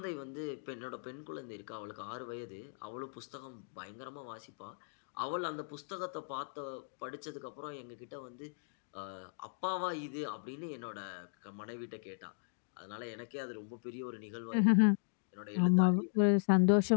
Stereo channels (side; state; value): right; silent; digital silence